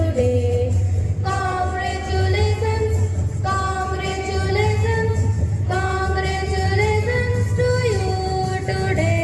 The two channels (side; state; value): both; identical; correlation 1.00